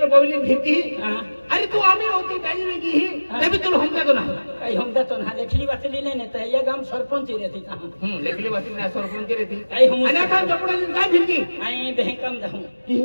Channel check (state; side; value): inverted; both; correlation -1.00